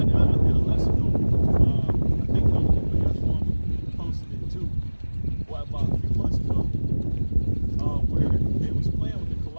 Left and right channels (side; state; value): both; inverted; correlation -1.00